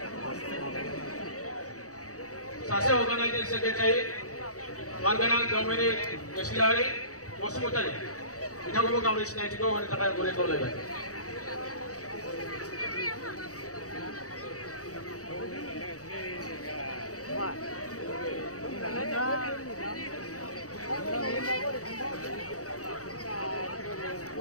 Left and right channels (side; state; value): right; late; 0.66 ms